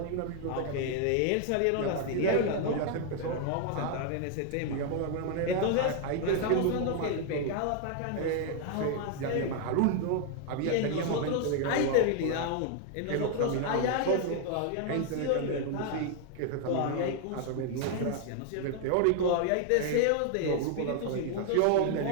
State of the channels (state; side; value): different; both; correlation 0.00